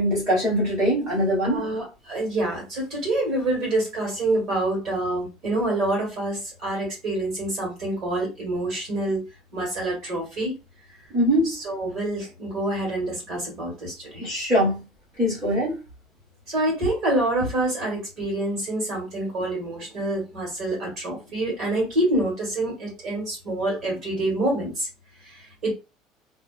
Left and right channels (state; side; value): normal; both; correlation 0.38